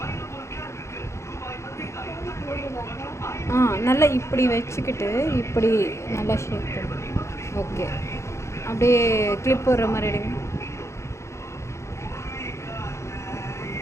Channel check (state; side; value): late; right; 0.14 ms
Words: நல்லா இப்படி வச்சுக்கிட்டு இப்படி நல்லா ஷேக் பண்ணு. ஓகே அப்படியே கிளிப் போடுற மாதிரி எடுங்க.